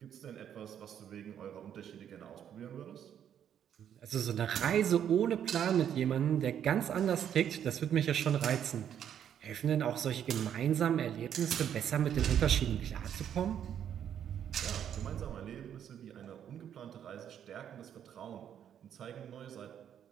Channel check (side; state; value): left; quieter; 9.4 dB